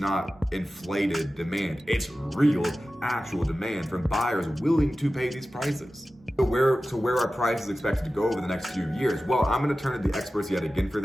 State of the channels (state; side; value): normal; both; correlation 0.95